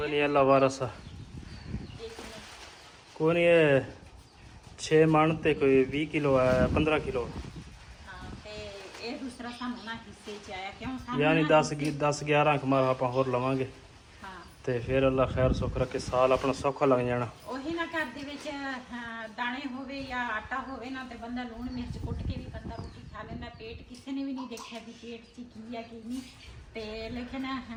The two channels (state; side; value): identical; both; correlation 1.00